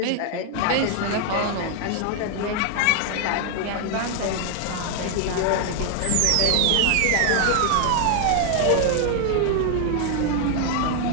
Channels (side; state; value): both; different; correlation 0.00